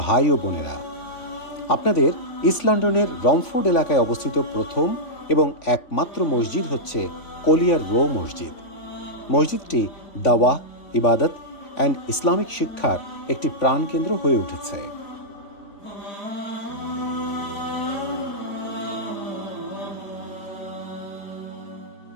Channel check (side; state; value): right; late; 3.5 ms